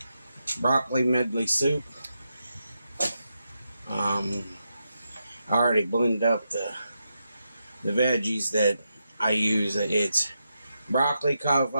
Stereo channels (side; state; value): both; inverted; correlation -0.86